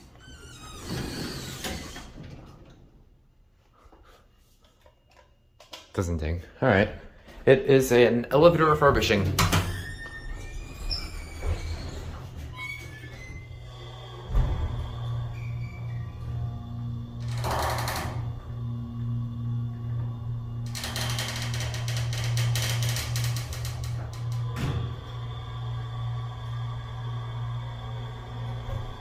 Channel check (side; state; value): both; identical; correlation 1.00